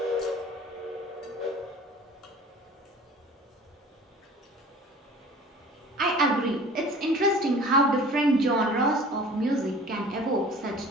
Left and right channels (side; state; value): both; normal; correlation 0.45